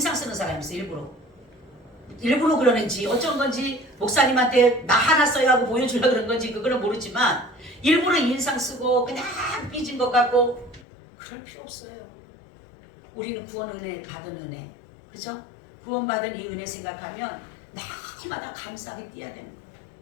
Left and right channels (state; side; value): drops out; right; at 10.9 s